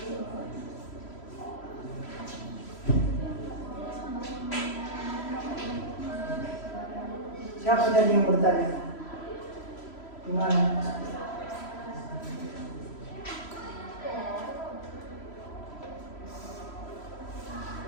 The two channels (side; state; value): right; late; 3.0 ms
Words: Siapa tadi yang bertanya? Gimana?